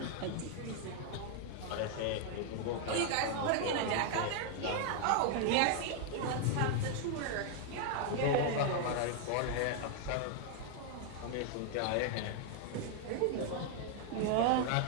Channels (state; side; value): different; both; correlation 0.00